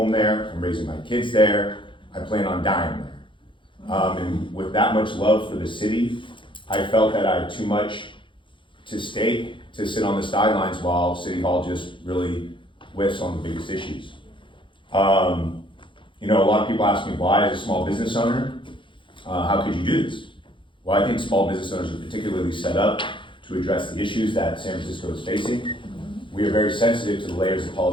there, I'm raising my kids there, I plan on dying there. And with that much love for the city, I felt that I had too much to stake to sit on the sidelines while City Hall just really whiffs on the biggest issues. You know, a lot of people ask me why, as a small business owner, how could you do this? Well, I think small business owners are particularly set up to address the issues that San Francisco is facing. We are very sensitive to the layers of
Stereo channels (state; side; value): late; right; 0.24 ms